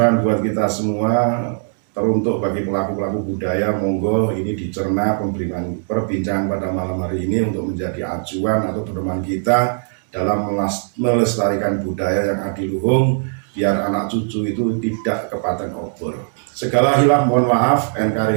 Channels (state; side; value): silent; left; digital silence